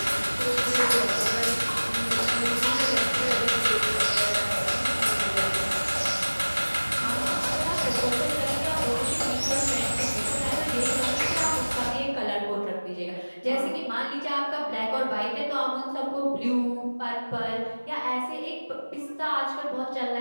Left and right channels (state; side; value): inverted; both; correlation -1.00